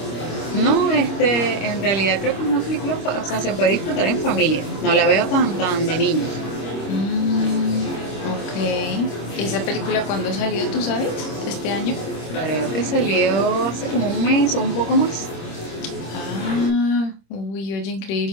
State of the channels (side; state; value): right; late; 26 ms